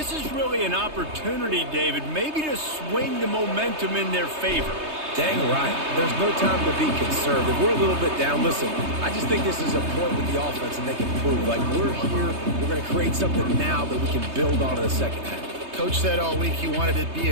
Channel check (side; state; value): left; late; 3.2 ms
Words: is really an opportunity, David, maybe to swing the momentum in their favor. Dang right. There's no time to be concerned. If we're a little bit down, listen, I just think this is a point with the offense and they can prove, like, we're here, we're going to create something now that we can build on in the second half. Coach said all week he wanted to be